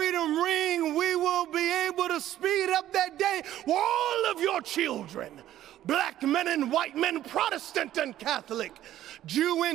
ring, we will be able to speed up that day where all of your children, black men and white men, Protestant and Catholic, Jew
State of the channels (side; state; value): left; quieter; 12.8 dB